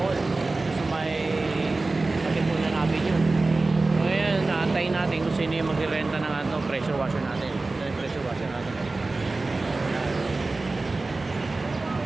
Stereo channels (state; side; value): quieter; left; 3.4 dB